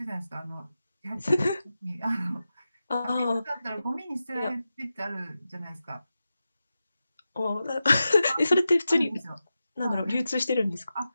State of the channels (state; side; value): inverted; both; correlation -0.92